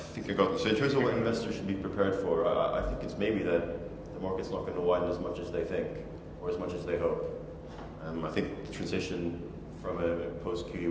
I got them. So in terms of what investors should be prepared for, I think it's maybe that the market's not going to widen as much as they think or as much as they hope. I think the transition from a post-QE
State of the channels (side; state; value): both; identical; correlation 1.00